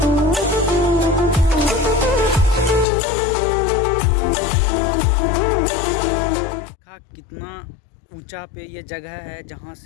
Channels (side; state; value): right; drops out; at 2.9 s